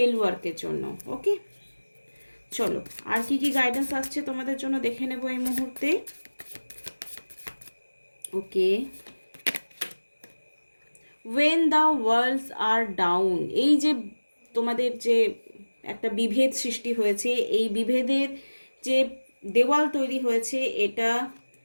ওয়ার্কের জন্য। ওকে, চলো আর কি কি গাইডেন্স আসছে তোমাদের জন্য দেখে নেব এই মুহূর্তে। Okay, when the worlds are down, এই যে তোমাদের যে একটা বিভেদ সৃষ্টি হয়েছে, এই বিভেদের যে দেওয়াল তৈরি হয়েছে, এটা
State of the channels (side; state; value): both; inverted; correlation -1.00